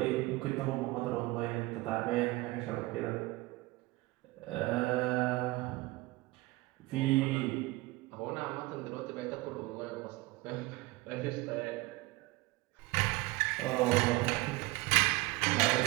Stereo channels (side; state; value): left; quieter; 20.9 dB